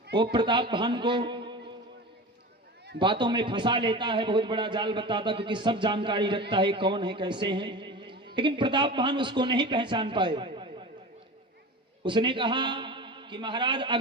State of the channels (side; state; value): both; normal; correlation 0.31